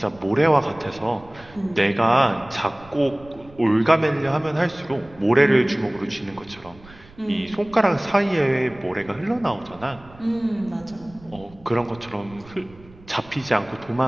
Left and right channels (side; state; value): right; noise; rumble, 23 dB below the sound